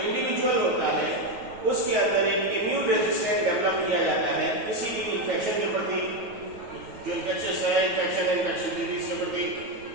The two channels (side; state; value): left; late; 9.2 ms